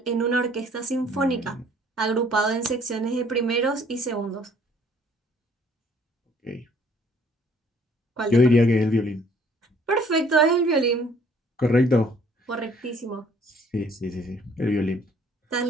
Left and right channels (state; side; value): normal; both; correlation 0.59